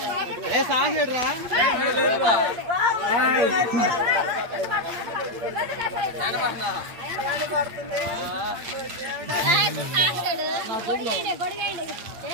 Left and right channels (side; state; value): left; late; 8.6 ms